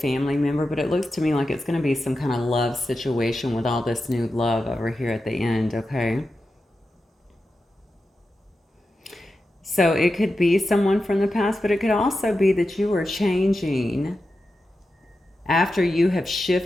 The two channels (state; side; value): normal; both; correlation 0.91